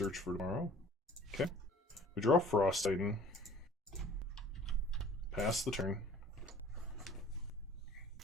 for Tomorrow. Okay. We draw Frost Titan. Pass the turn.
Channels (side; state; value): both; normal; correlation 0.51